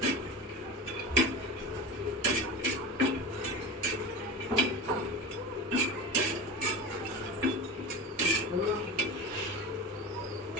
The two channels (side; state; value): both; normal; correlation 0.28